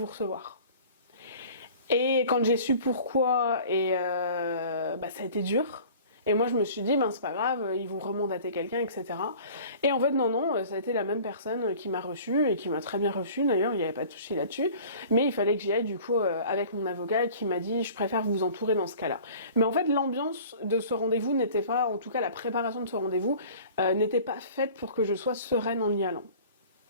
recevoir. Et quand j'ai su pourquoi, et ça a été dur. Et moi je me suis dit c'est pas grave, ils vont remandater quelqu'un, etc. Et en fait non, ça a été la même personne qui m'a reçue, et qui m'a très bien reçue d'ailleurs, il n'y avait pas de souci là-dessus, mais il fallait que j'y aille du coup avec mon avocat, qui m'a dit je préfère vous entourer dans ce cas-là. Mais en fait l'ambiance de ce rendez-vous n'était pas, en tout cas la préparation de ce rendez-vous n'était pas faite pour que je sois sereine en y allant.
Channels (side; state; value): both; inverted; correlation -0.45